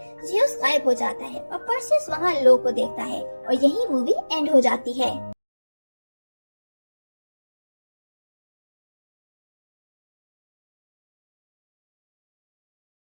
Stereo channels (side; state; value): both; inverted; correlation -1.00